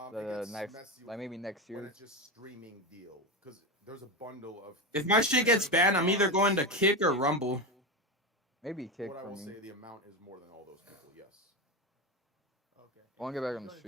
next, like maybe next When year. it's just streaming deal, because there's a bundle of. If my shit gets banned, I'm either going to Kick or Rumble. Maybe Kick What I for will me. say, the amount is more than all those people. Yes. Okay. I want to get back on the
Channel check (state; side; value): normal; both; correlation 0.18